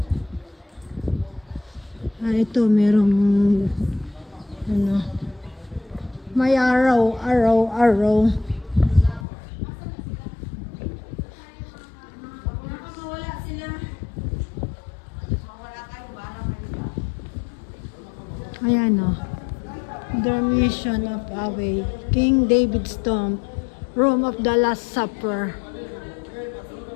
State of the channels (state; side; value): drops out; right; at 9.2 s